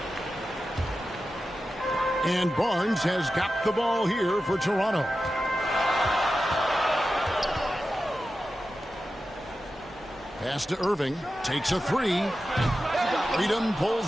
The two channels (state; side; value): normal; both; correlation 0.92